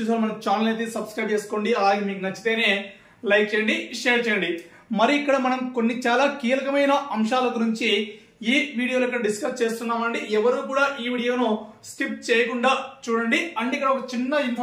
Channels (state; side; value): identical; both; correlation 1.00